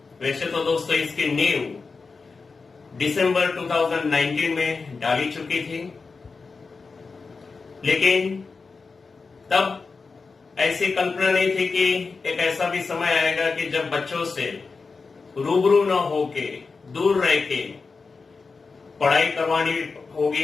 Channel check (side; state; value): right; quieter; 4.5 dB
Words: वैसे तो दोस्तों इसकी नींव दिसंबर 2019 में डाली चुकी थी, लेकिन तब ऐसी कल्पना नहीं थी कि एक ऐसा भी समय आएगा कि जब बच्चों से रूबरू न होके, दूर रह के पढ़ाई करवानी